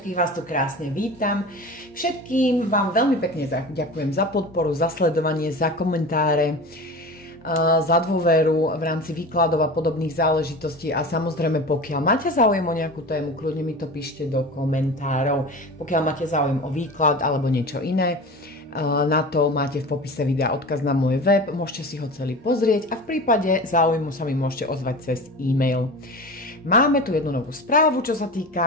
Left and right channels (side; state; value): both; normal; correlation 0.32